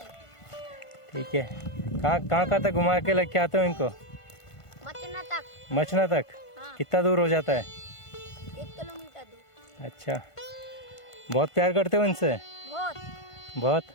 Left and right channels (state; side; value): late; right; 1.5 ms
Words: ठीक है। कहाँ तक घुमा के लेके आते हो इनको? मचना तक। मचना तक? हाँ। कितना दूर हो जाता है? 1 किलोमीटर दूर। अच्छा, बहुत प्यार करते हो इनसे? बहुत।